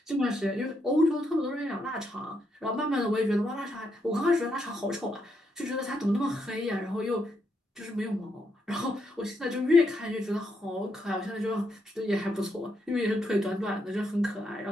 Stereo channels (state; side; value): normal; both; correlation 0.79